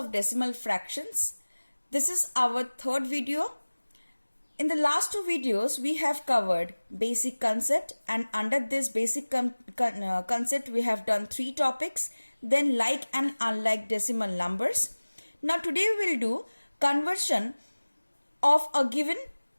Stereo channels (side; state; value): both; inverted; correlation -1.00